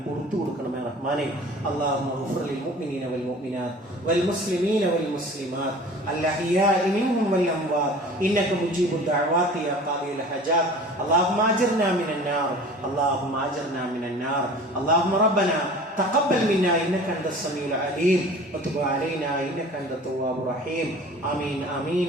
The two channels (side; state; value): both; normal; correlation 0.43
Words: പുറത്തു കൊടുക്കണമേ റഹ്മാനെ. അല്ലാഹുമ്മ ഗ്ഫിർ ലിൽ മുഅ്മിനീന വൽ മുഅ്മിനാത്ത് വൽ മുസ്ലിമീന വൽ മുസ്ലിമാത്ത് അൽഅഹ്യാഇ മിൻഹും വൽ അംവാത്ത് ഇന്നക മുജീബുദ് ദഅവാതി യാ ഖാദിയൽ ഹജാത്ത്. അല്ലാഹുമ്മ അജിർനാ മിനൻ നാർ, അല്ലാഹുമ്മ അജിർനാ മിനൻ നാർ. اللهم ربنا تقبل منا إنك أنت السميع العليم وتب علينا إنك أنت التواب الرحيم. آمين آمين